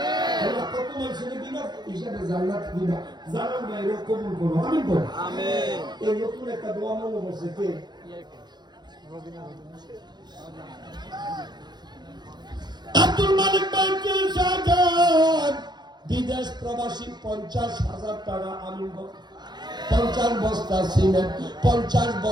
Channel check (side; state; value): left; late; 0.21 ms